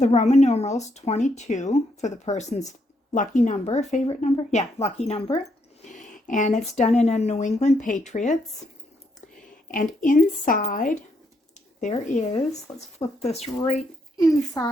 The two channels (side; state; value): both; normal; correlation 0.76